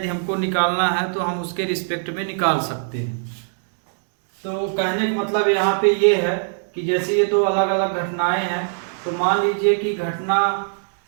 हमको निकालना है तो हम उसके रिस्पेक्ट में निकाल सकते हैं। तो कहने का मतलब यहाँ पे ये है कि जैसे ये 2 अलग अलग घटनाएं हैं, तो मान लीजिए कि घटना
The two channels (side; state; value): left; silent; digital silence